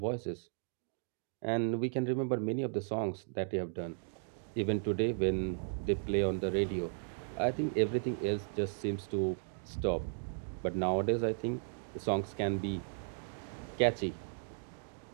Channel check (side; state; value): left; silent; digital silence